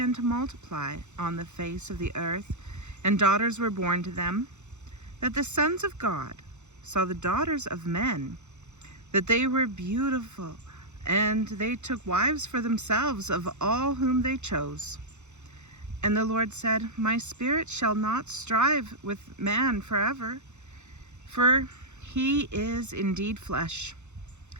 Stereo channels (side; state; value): left; late; 0.83 ms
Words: to multiply on the face of the earth, and daughters were born to them, that the sons of God saw the daughters of men, that they were beautiful, and they took wives for themselves of all whom they chose. And the Lord said, My spirit shall not strive with man forever, for he is indeed flesh,